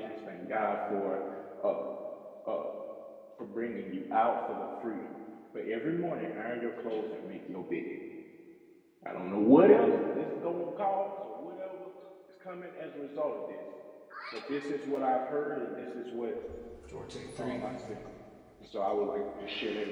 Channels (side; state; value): both; identical; correlation 1.00